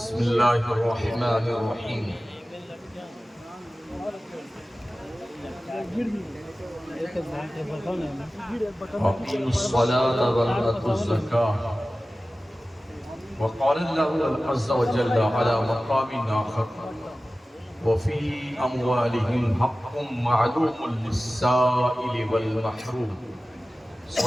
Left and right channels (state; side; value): normal; both; correlation 0.96